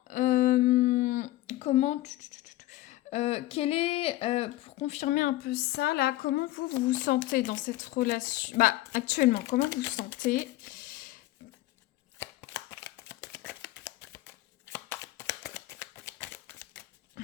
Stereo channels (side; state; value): right; quieter; 16.7 dB